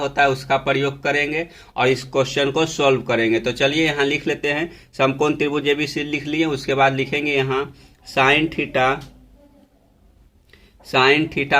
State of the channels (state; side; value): identical; both; correlation 1.00